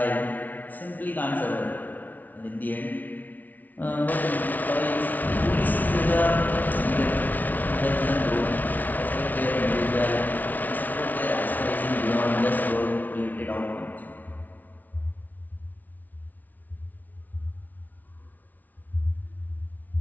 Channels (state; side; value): late; right; 0.079 ms